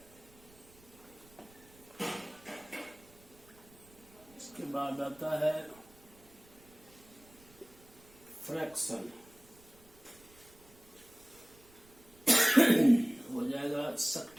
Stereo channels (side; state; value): right; noise; rumble, 25 dB below the sound